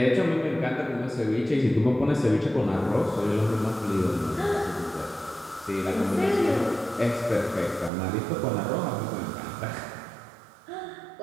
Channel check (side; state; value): left; drops out; at 7.9 s